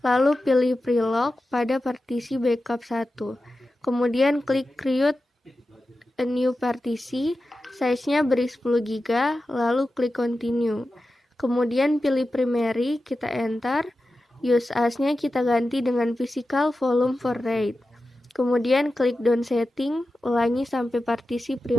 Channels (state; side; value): normal; both; correlation 0.92